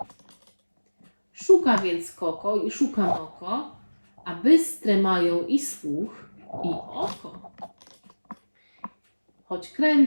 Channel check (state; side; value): inverted; both; correlation -1.00